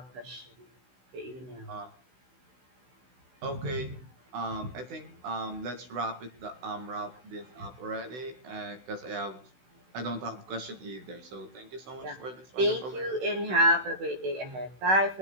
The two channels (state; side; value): late; left; 16 ms